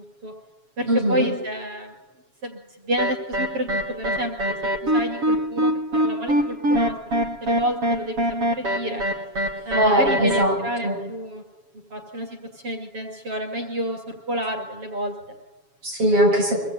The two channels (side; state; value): left; late; 7.2 ms